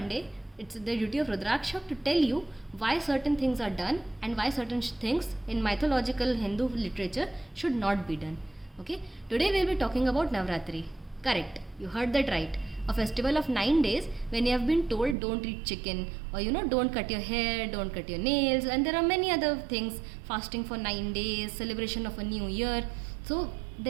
it's the duty of Rudraksha to tell you why certain things are done and why certain things in mythological Hindu literature should not be done. Okay, today we'll be talking about Navratri. Correct, you heard that right. A festival of 9 days when you have been told don't eat chicken, or don't cut your hair, don't cut your nails, and there are many other things, fasting for 9 days, celebration of a new year. So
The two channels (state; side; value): drops out; left; at 15.2 s